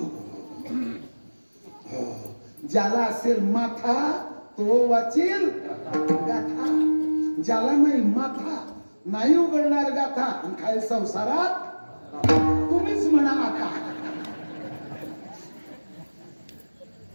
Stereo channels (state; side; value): inverted; both; correlation -1.00